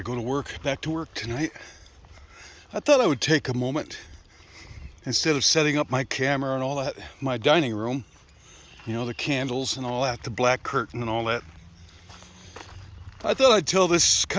go to work, back to work tonight. I thought I would take a moment, instead of setting up my camera and all that, my dining room, the candles and all that, the black curtain and all that. I thought I'd tell this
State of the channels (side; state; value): both; identical; correlation 1.00